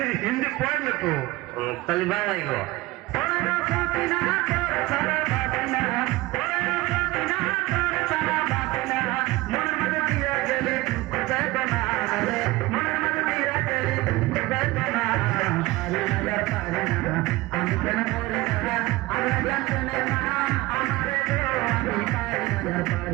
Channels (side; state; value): left; quieter; 19.8 dB